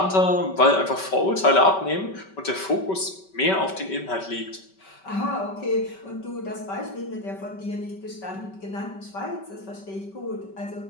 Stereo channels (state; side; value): late; right; 5.2 ms